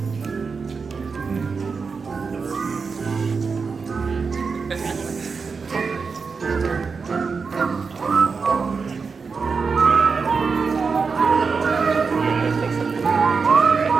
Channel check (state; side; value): quieter; left; 5.1 dB